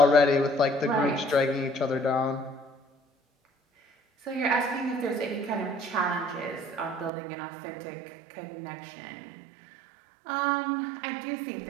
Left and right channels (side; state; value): left; drops out; at 7.1 s